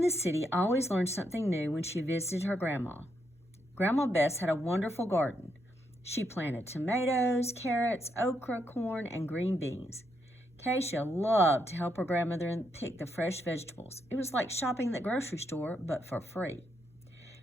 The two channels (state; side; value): normal; both; correlation 0.79